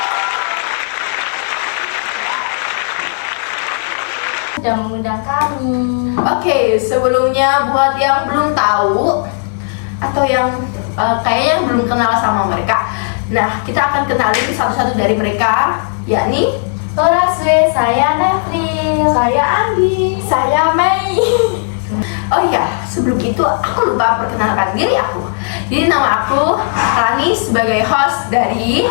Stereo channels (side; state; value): right; silent; digital silence